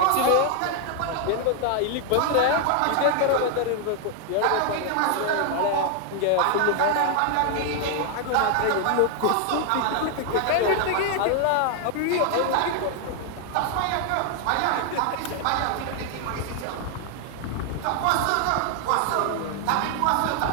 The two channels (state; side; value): different; both; correlation 0.00